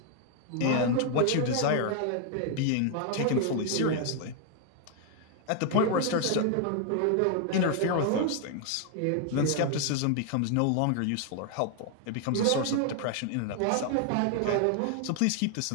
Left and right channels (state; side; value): different; both; correlation 0.00